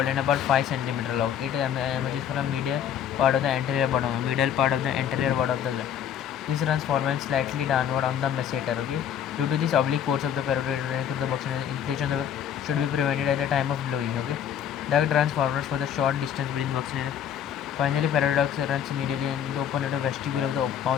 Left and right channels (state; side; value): quieter; right; 9.1 dB